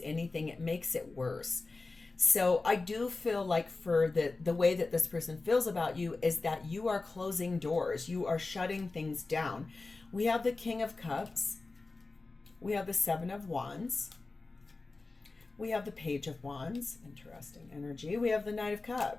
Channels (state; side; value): quieter; right; 3.6 dB